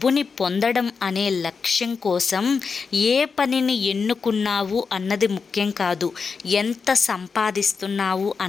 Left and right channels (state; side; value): quieter; right; 5.2 dB